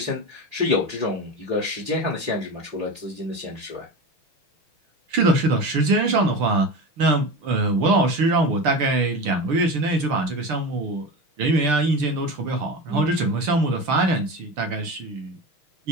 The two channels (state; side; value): late; left; 6.8 ms